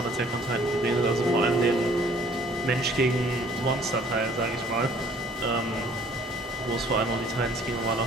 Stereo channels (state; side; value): normal; both; correlation 0.56